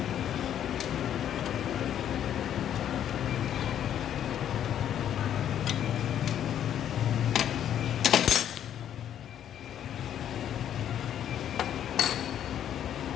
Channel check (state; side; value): quieter; right; 10.2 dB